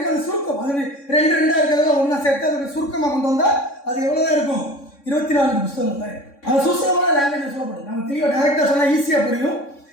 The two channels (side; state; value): right; late; 3.6 ms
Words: அது சுருக்கம், அது 2 இருக்கிறதெல்லாம் ஒன்றா சேர்த்து அதோட சுருக்கமாக கொண்டு வந்தால் அது எவ்வளோதான் இருக்கும், 24 புஸ்தகங்கள் தான் இருக்கும். அது சுசலமான லாங்குவேஜ் சொல்லப்படும். நம்ம தெளிவாக டைரெக்டாக சொன்னால் ஈஸியாக புரியும்.